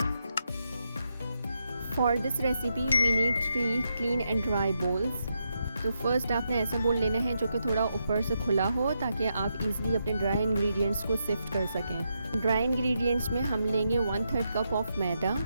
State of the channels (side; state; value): both; inverted; correlation -0.83